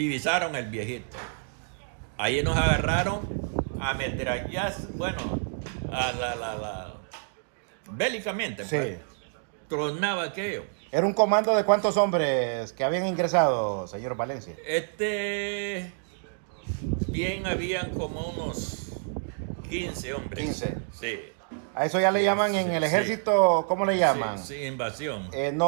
el viejito. Ahí nos agarraron a metrallas, bueno, bélicamente, Sí. pues. Tronaba aquello. ¿Era un comando de cuántos hombres que habían ingresado, señor Valencia? Bien, habían como unos 15 hombres. 15. Sí. A eso ya le Sí, llaman en sí, el sí. ejército, ¿cómo le llaman? Sí, invasión.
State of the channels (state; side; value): silent; left; digital silence